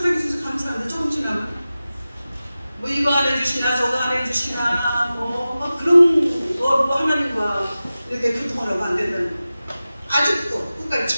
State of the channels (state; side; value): inverted; both; correlation -0.95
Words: 감사합니다. 조금 지나면 뭐 이거 안 해주시나 저거 안 해주시나 뭐 그런 거 하나님과 이렇게 교통하라고 안 된다는 거. 아직도 끝까지